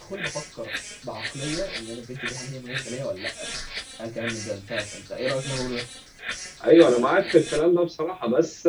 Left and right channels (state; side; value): identical; both; correlation 1.00